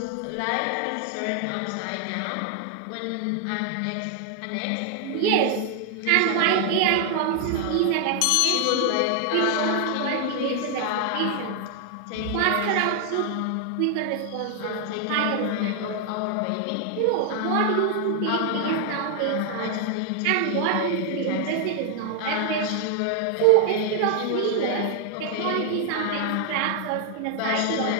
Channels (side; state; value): both; different; correlation 0.00